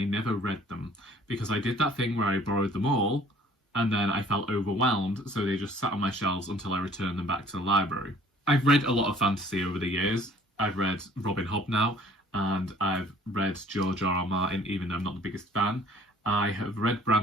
never read them, because I did that thing where I borrowed them all, and then I felt overwhelmed, so they just sat on my shelves until I returned them back to the library. I've read a lot of fantasy over the years. I've read Robin Hobb now, and I've read George R.R. Martin, even though I'm not the biggest fan. I have read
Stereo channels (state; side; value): normal; both; correlation 0.54